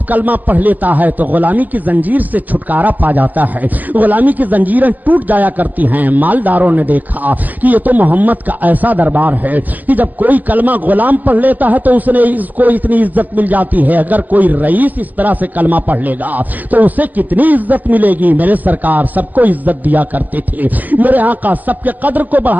کلمہ پڑھ لیتا ہے تو غلامی کی زنجیر سے چھٹکارا پا جاتا ہے, غلامی کی زنجیریں ٹوٹ جایا کرتی ہیں. مالداروں نے دیکھا کہ یہ تو محمد کا ایسا دربار ہے کہ جب کوئی کلمہ غلام پڑھ لیتا ہے تو اس کو اتنی عزت مل جاتی ہے, اگر کوئی رئیس اس طرح سے کلمہ پڑھ لے گا تو اسے کتنی عزت ملے گی. میرے سرکار سب کو عزت دیا کرتے تھے, میرے آقا سب کے قدر کو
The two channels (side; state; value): left; late; 0.082 ms